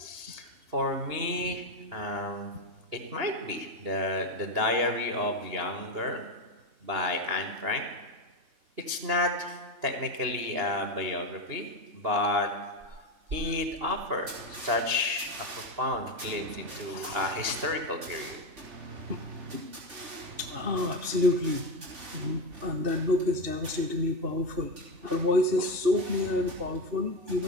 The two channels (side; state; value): left; late; 2.9 ms